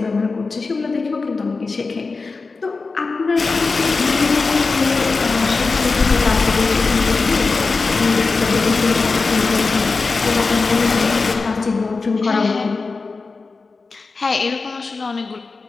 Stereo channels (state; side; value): quieter; right; 4.1 dB